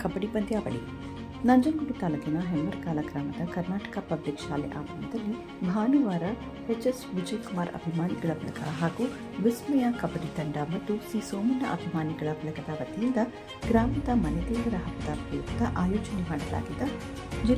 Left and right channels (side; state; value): both; identical; correlation 1.00